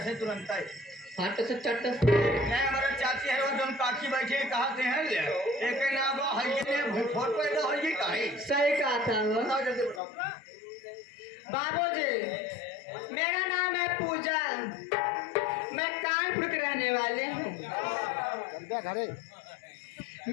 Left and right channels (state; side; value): drops out; right; at 10.0 s